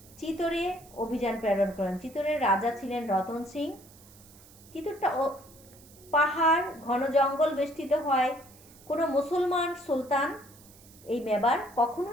চিতরে অভিযান প্রেরণ করেন। চিতরের রাজা ছিলেন রতন সিং। চিতরটা পাহাড় ঘন জঙ্গল বেষ্টিত হয়। কোনো মুসলমান সুলতান এই মেবার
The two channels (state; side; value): noise; right; hiss, 23 dB below the sound